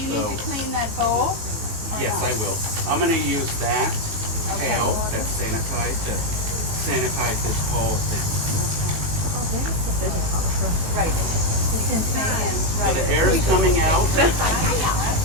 So need to clean that bowl? yes, I will. I'm gonna use that pail that's sanitized to sanitize this whole thing. Right. It's in pan. So the air is coming out.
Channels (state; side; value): late; left; 19 ms